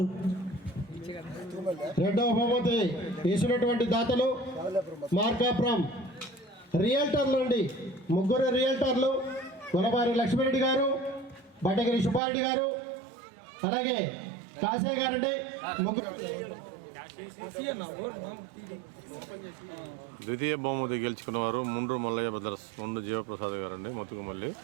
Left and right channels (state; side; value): drops out; left; at 12.2 s